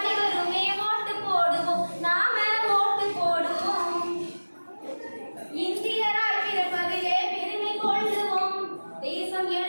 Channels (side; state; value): both; inverted; correlation -1.00